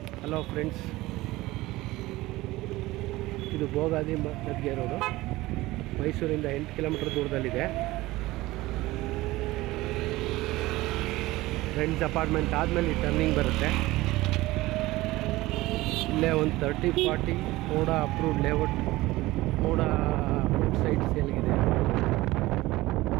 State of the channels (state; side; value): quieter; left; 18.8 dB